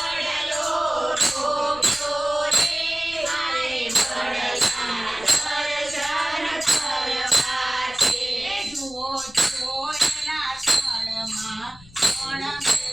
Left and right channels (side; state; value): left; noise; rumble, 21 dB below the sound